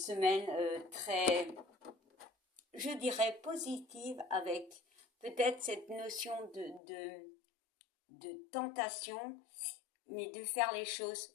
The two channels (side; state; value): right; drops out; at 6.8 s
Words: très, je dirais, positive avec peut-être cette notion de tentation, mais de faire les choses